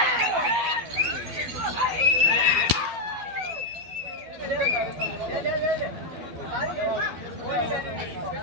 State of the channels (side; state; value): left; late; 12 ms